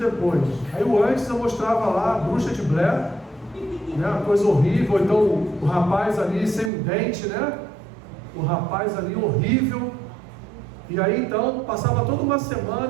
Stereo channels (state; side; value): drops out; left; at 6.7 s